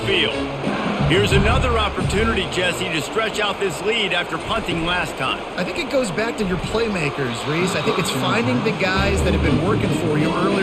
Here's another opportunity, Jesse, to stretch out this lead after punting last time. I think it goes back to your playmakers, Reese. I think it's finding the guys that have been working for you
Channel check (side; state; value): both; identical; correlation 1.00